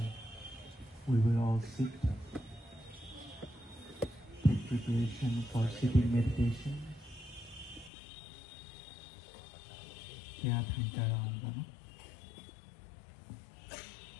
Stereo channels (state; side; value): drops out; right; at 7.9 s